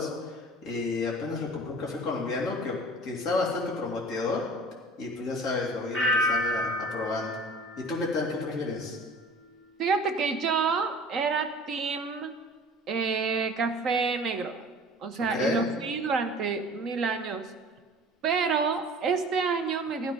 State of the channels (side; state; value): both; normal; correlation 0.43